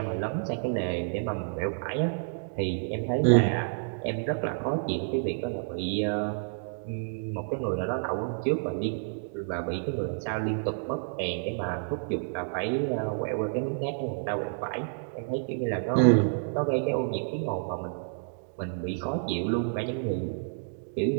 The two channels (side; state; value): left; silent; digital silence